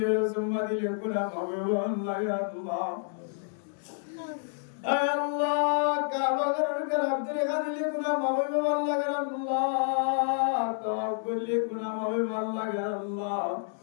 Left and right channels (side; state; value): right; silent; digital silence